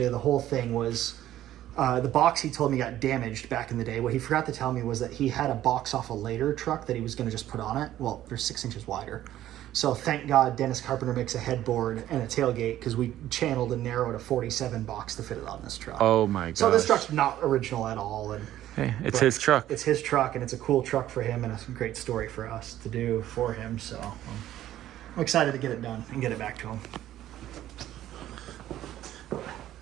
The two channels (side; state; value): left; quieter; 13.1 dB